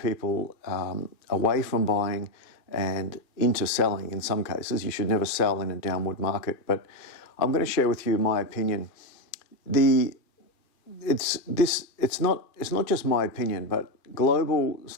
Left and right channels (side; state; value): right; late; 2.4 ms